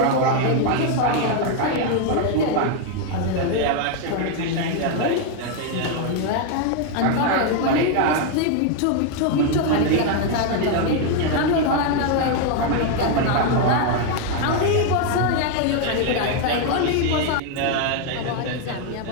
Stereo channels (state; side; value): different; both; correlation 0.01